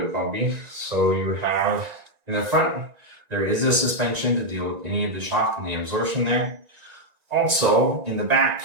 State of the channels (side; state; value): left; late; 1.9 ms